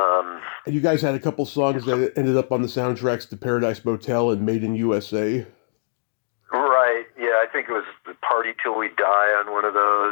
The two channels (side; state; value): right; silent; digital silence